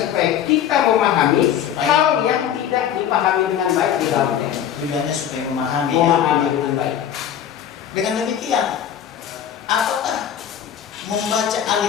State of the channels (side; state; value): right; quieter; 9.7 dB